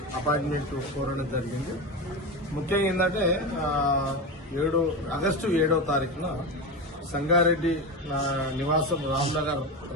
అపాయింట్మెంట్ కోరడం జరిగింది. ముఖ్యంగా ఏంటంటే ఆగస్టు 7వ తారీఖున సంగారెడ్డి నివాసం రామ్నగర్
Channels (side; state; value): both; normal; correlation 0.20